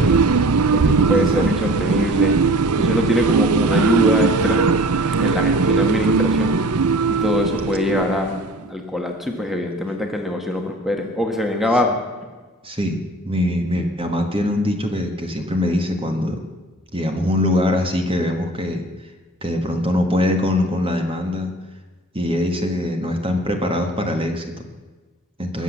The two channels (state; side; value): normal; both; correlation 0.45